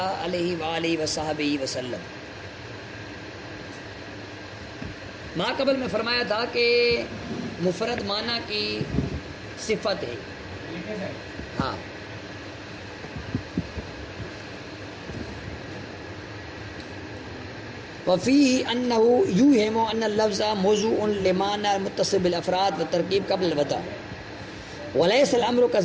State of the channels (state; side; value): identical; both; correlation 1.00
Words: علیہ وآلہ وصحبہ وسلم۔ ماں قبل میں فرمایا تھا کہ مفرد معنی کی صفت ہے۔ ہاں، وفیہ انہ یوہم ان اللفظ موضوع لمعنی متصل بالافراد والترکیب قبل الوضع، وليس الامر